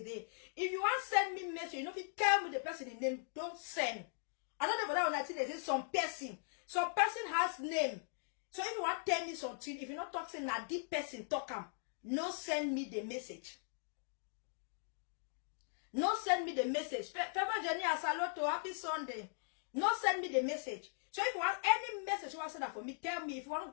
If you want to send me message, you know if you tell me the person in name, don't send. I don't know about that when I say some person has name. So if you want to tell me something, if you're not talking na deep person talk no send me the message. No send me the message. Favor Johnny Asaloto, happy Sunday. No send me the message. So if you want any message you want to send that for me, tell me. If you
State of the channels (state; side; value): silent; right; digital silence